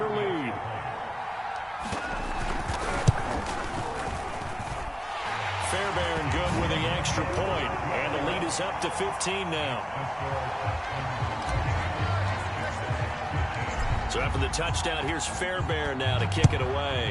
lead. good with the extra point, and the lead is up to 15 now. So after the touchdown, here's Fairbairn now to kick it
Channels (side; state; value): both; identical; correlation 1.00